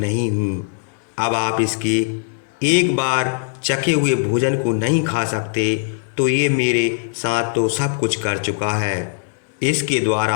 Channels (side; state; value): right; silent; digital silence